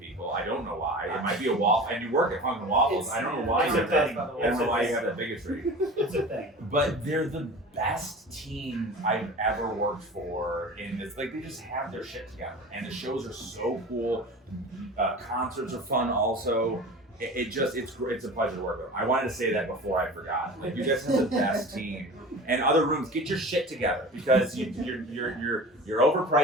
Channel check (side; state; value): both; normal; correlation 0.36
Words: I don't know why. It might be a wall. And you work at Funk N Waffles. I don't know why. It's a thing. I don't know why you have that bigotry. It's a thing. But they're the best team I've ever worked for. In this, like, they just have their shit together, and the shows are so cool. Concerts are fun also. It's a pleasure to work with. I wanted to say that before I forgot. Like, you guys have the best team. And other rooms, get your shit together, because you're